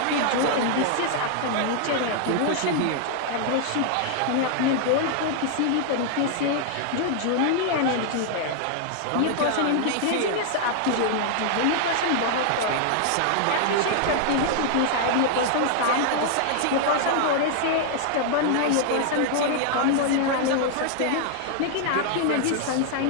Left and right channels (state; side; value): different; both; correlation -0.01